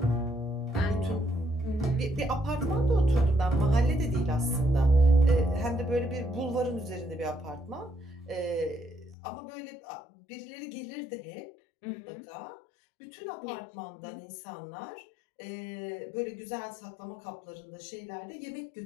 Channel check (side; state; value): right; drops out; at 9.2 s